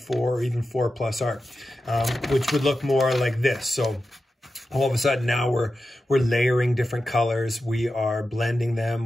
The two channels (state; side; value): normal; both; correlation 0.91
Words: or even 4 plus art, which would look more like this. So all of a sudden now we're layering different colors. We are blending